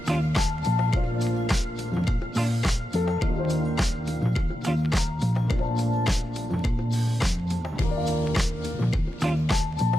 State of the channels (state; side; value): normal; both; correlation 0.89